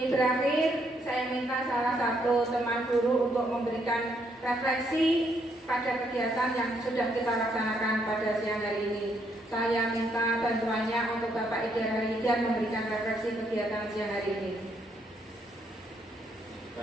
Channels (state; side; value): normal; both; correlation 0.73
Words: berakhir, saya minta salah satu teman guru untuk memberikan refleksi pada kegiatan yang sudah kita laksanakan pada siang hari ini. Saya minta bantuannya untuk Bapak Ida Halidan memberikan refleksi kegiatan siang hari ini.